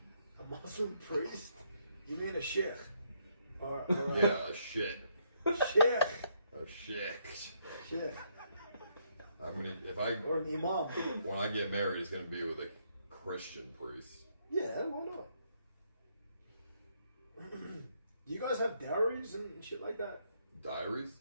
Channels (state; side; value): inverted; both; correlation -0.73